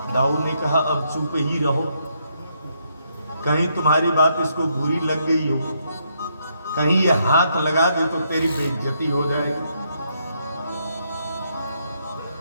दाऊद ने कहा अब चुप ही रहो, कहीं तुम्हारी बात इसको बुरी लग गई हो, कहीं ये हाथ लगा दे तो तेरी बेइज्जती हो जाएगी।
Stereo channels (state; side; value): inverted; both; correlation -0.76